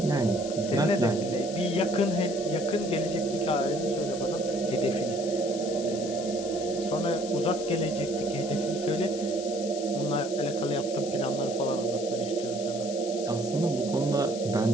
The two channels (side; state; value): left; noise; hiss, 12 dB below the sound